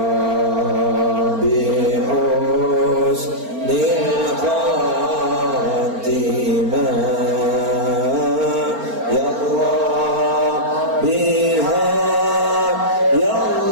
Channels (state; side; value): late; left; 4.4 ms